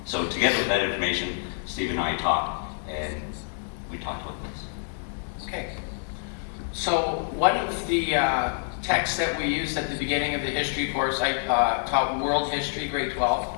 So together with that information, Steve and I talked, and we talked about this. Okay. So one of the texts that we used at the beginning of the history course, I taught World History, grade 12.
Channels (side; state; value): right; silent; digital silence